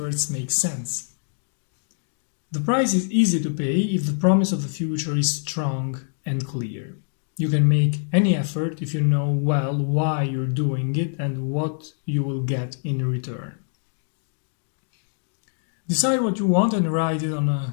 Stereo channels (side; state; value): right; silent; digital silence